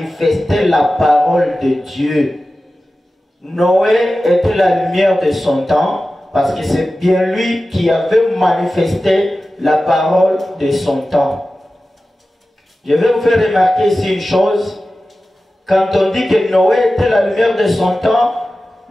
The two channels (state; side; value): normal; both; correlation 0.95